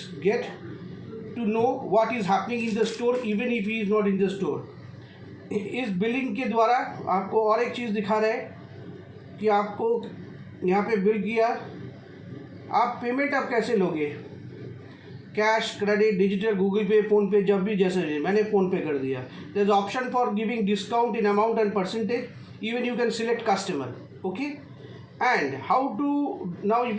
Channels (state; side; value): identical; both; correlation 1.00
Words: get to know what is happening in the store even if he is not in the store. इस billing के द्वारा आपको और एक चीज़ दिखा रहा है कि आपको यहाँ पे बिल किया, आप पेमेंट आप कैसे लोगे, cash, credit, digital, Google Pay, PhonePe, जब भी जैसे मैंने फ़ोन पे कर दिया। There is option for giving discount in amount and percentage, even you can select customer, okay. And how to, now if